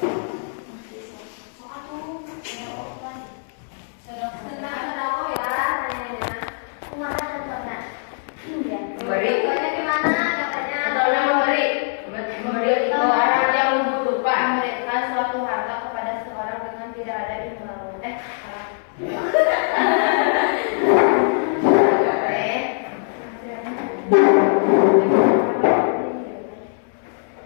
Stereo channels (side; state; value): right; silent; 64 dB below the other